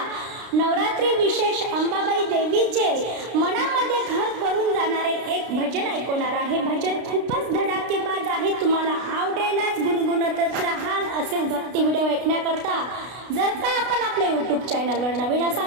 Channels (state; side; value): late; left; 32 ms